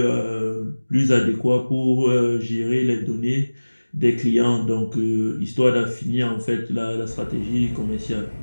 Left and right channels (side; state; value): both; inverted; correlation -1.00